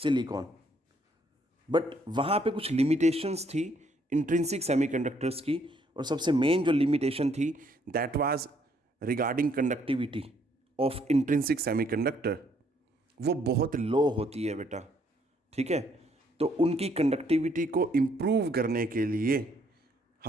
बट वहाँ पे कुछ लिमिटेशंस थी इंट्रिंसिक सेमीकंडक्टर्स की, और सबसे मेन जो लिमिटेशन थी that was regarding conductivity of intrinsic semiconductor. वो बहुत लो होती है बेटा, ठीक है। तो उनकी कंडक्टिविटी को इम्प्रूव करने के लिए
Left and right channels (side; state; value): both; normal; correlation 0.68